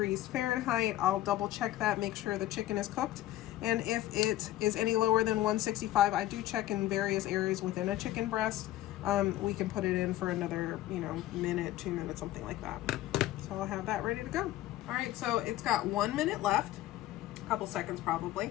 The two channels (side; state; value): right; quieter; 14.8 dB